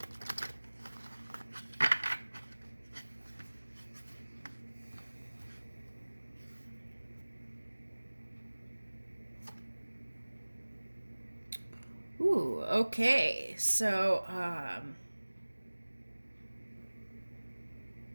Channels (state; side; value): inverted; both; correlation -1.00